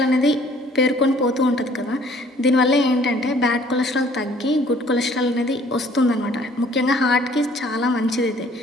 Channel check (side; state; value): both; normal; correlation 0.57